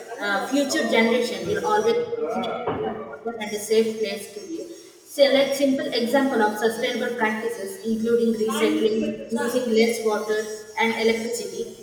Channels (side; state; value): both; identical; correlation 1.00